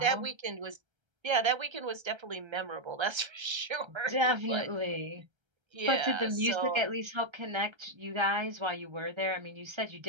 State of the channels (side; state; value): left; late; 1.3 ms